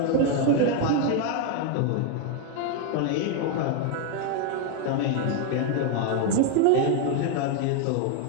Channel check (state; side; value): different; both; correlation 0.01